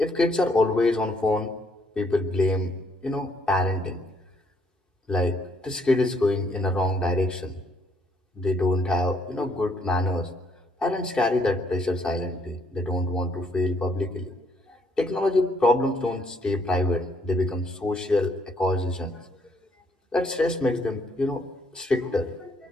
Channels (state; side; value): normal; both; correlation 0.68